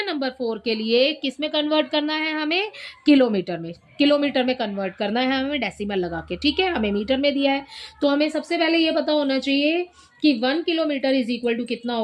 नंबर 4 के लिए किस में कन्वर्ट करना है, हमें किलोमीटर में, किलोमीटर में कन्वर्ट करना है हमें डेसिमल लगा के, ठीक है। हमें मीटर में दिया है तो हमें सबसे पहले ये पता होना चाहिए कि 1 किलोमीटर इज इक्वल टू कितना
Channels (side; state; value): both; identical; correlation 1.00